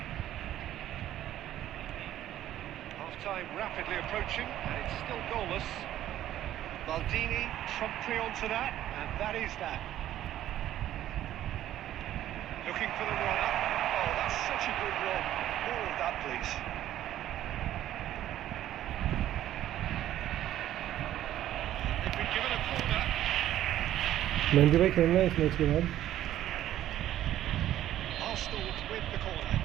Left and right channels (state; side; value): quieter; left; 12.6 dB